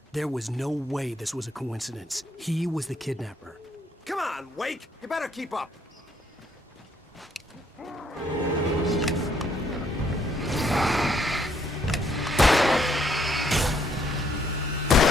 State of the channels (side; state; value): both; normal; correlation 0.69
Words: There was no way this was a coincidence. He was the kidnapper. Come on, Wake! You better keep up.